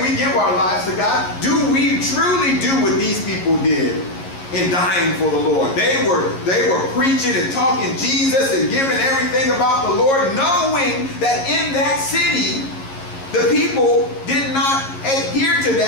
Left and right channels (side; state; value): right; late; 11 ms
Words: we give our lives to God, do we truly do what these people did in dying for the Lord. They were preaching and talking Jesus and giving everything about the Lord, knowing that in that city, the people did not adhere to